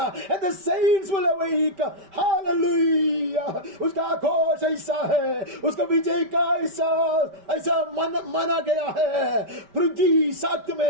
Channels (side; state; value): left; late; 5.1 ms